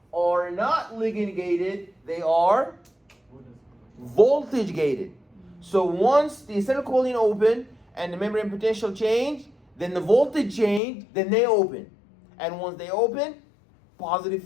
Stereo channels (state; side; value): drops out; right; at 10.8 s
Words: are not ligand gated, they are voltage gated. So once the acetylcholine open and the membrane potential change, then the voltage change, then they open. And once they open, positive